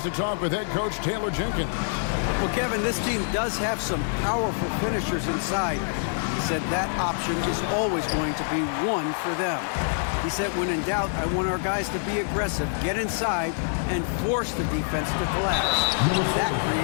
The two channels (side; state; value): right; silent; 60 dB below the other